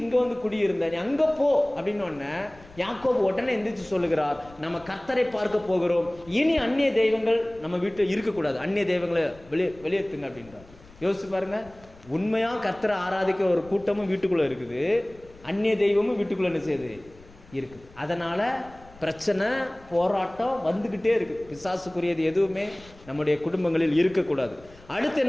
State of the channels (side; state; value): left; noise; rumble, 23 dB below the sound